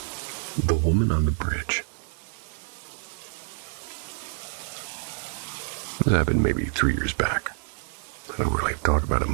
The woman on the bridge. This happened maybe 3 years back. I don't really talk about it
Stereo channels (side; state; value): left; silent; 60 dB below the other